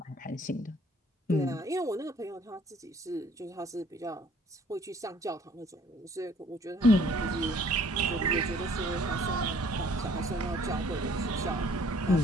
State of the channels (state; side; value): normal; both; correlation 0.58